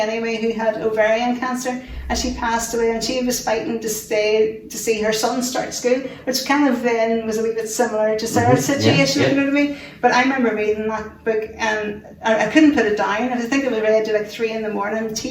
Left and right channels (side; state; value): both; identical; correlation 1.00